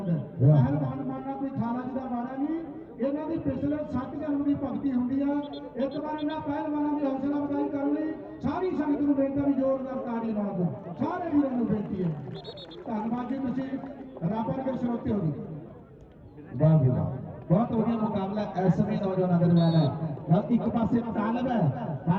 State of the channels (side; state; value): both; identical; correlation 1.00